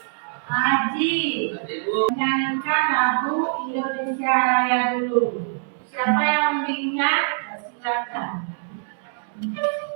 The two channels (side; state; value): left; silent; digital silence